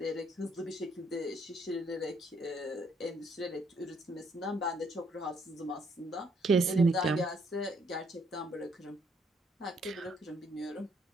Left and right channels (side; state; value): both; normal; correlation 0.69